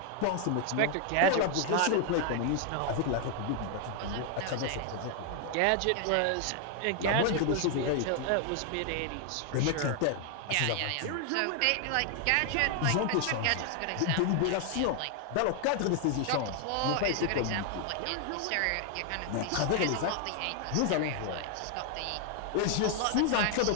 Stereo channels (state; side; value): different; both; correlation 0.00